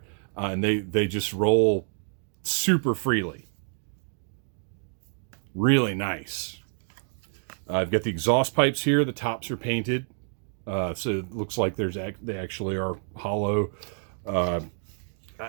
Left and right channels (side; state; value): left; silent; 58 dB below the other